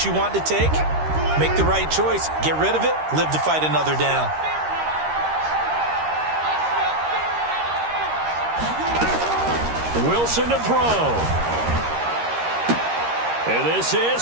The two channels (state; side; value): late; left; 13 ms